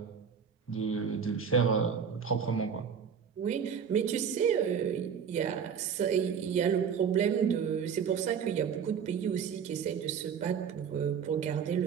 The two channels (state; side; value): quieter; left; 7.1 dB